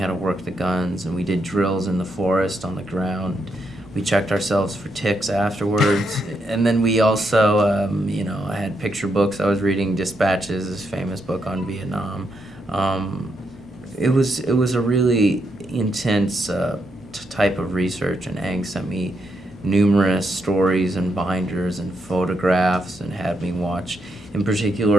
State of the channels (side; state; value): both; normal; correlation 0.80